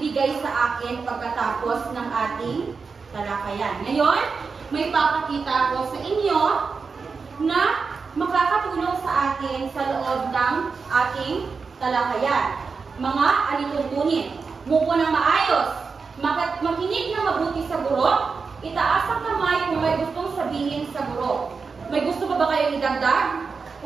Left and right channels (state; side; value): quieter; left; 5.0 dB